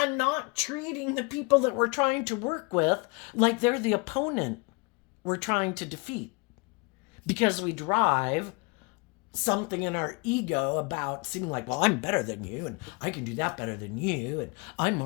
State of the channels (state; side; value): quieter; right; 29.5 dB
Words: not treating the people that we're trying to work with like they're the opponent we're trying to defeat because we drive something in our ego about seeming like, well, I'm better than you and I can do that better than you and I'm